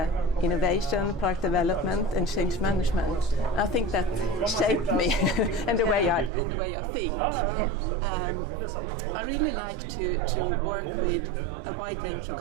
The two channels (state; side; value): drops out; left; at 6.3 s